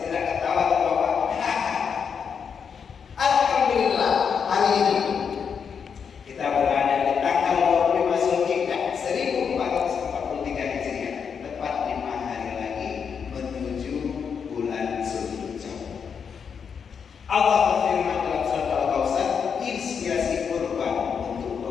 tidak ketawa terbawa. Alhamdulillah hari ini kita berada di tanggal 25 Zulhijjah 1443 Hijriah, tepat 5 hari lagi menuju bulan Zulhijjah. Allah berfirman dalam surat Al-Kautsar, inspirasi kurban untuk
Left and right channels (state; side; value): quieter; right; 6.7 dB